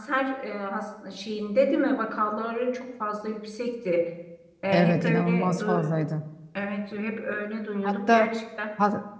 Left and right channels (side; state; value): both; identical; correlation 1.00